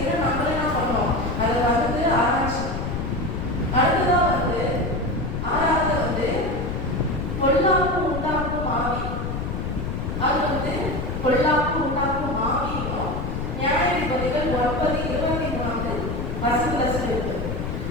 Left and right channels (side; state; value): left; noise; rumble, 4 dB below the sound